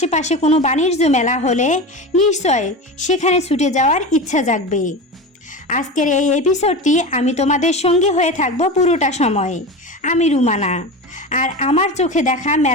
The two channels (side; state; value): both; normal; correlation 0.26